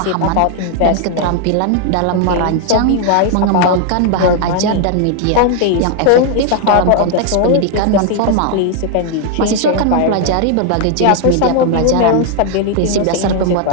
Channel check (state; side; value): different; both; correlation 0.00